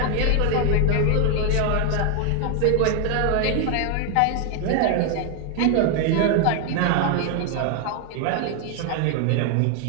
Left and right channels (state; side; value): different; both; correlation 0.01